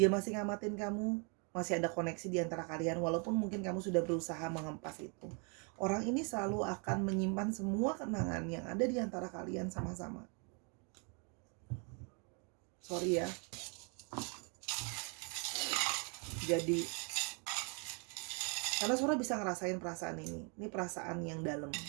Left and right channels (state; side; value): quieter; left; 36.1 dB